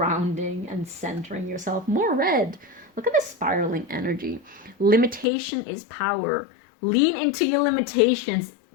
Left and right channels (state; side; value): drops out; right; at 5.2 s